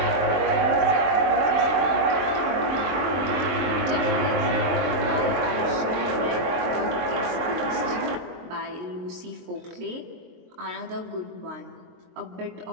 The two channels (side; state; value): left; late; 23 ms